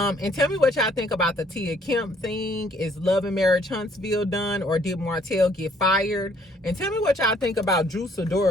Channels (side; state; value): both; normal; correlation 0.63